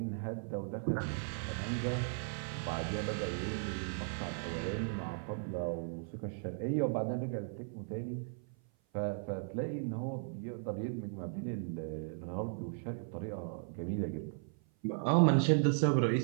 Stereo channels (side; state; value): left; silent; 53 dB below the other